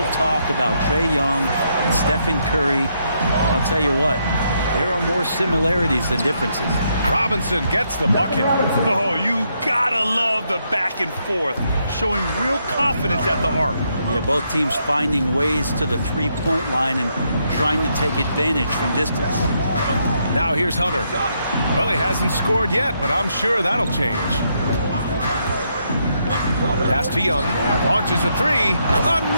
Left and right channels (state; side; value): inverted; both; correlation -0.77